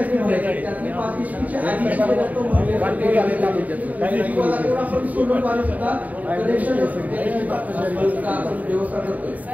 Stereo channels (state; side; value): late; left; 0.074 ms